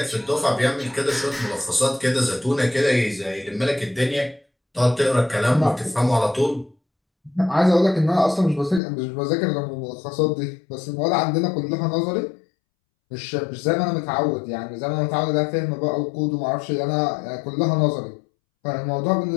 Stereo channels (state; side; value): drops out; right; at 8.8 s